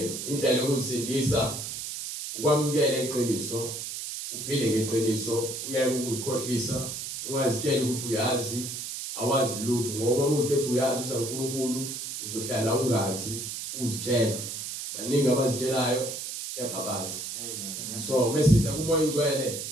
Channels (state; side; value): noise; right; hiss, 6 dB below the sound